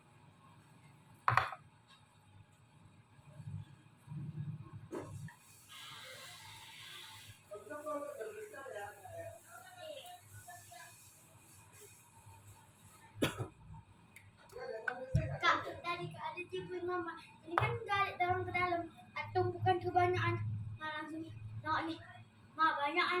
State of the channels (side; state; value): both; identical; correlation 1.00